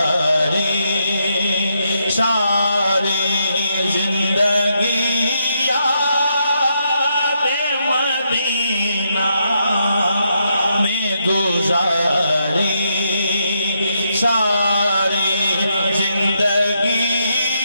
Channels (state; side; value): inverted; both; correlation -0.79